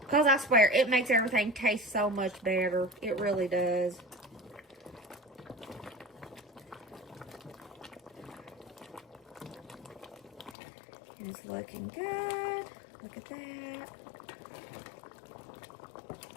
I swear, it makes everything taste so much better. It really does. And it's looking good. Look at that.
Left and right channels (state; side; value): drops out; right; at 10.6 s